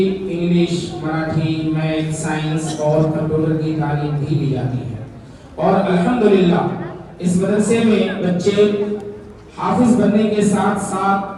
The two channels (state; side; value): identical; both; correlation 1.00